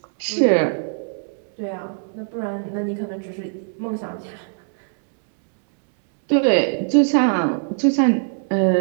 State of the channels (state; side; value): silent; left; 65 dB below the other